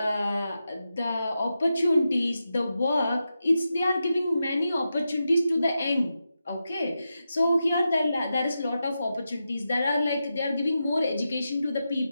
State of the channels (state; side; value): inverted; both; correlation -0.89